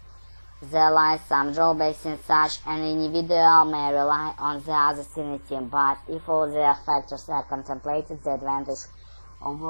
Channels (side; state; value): both; inverted; correlation -1.00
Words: there lies some drawbacks in such an individual may rely on the others in a team. But if all the factors are contemplated, the advantage of